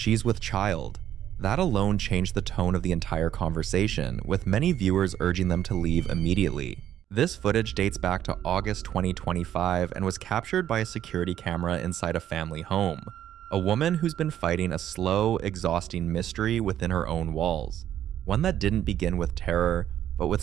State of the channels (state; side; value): quieter; left; 11.0 dB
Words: with child. That alone changed the tone of the entire conversation, with many viewers urging them to leave immediately. This footage dates back to August 2025 and was captured by a security camera inside a family home. A woman who's been fighting a slow, exhausting mystery within her own walls. One that didn't begin with terror, but with